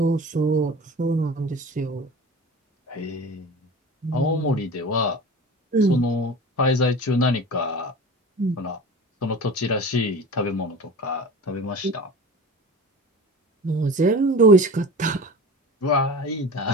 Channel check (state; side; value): normal; both; correlation 0.36